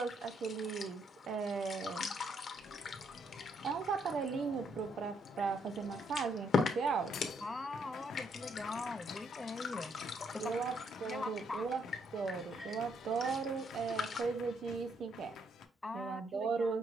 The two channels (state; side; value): normal; both; correlation 0.73